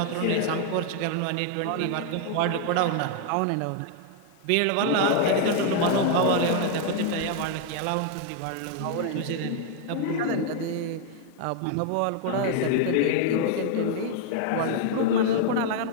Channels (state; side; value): different; both; correlation 0.00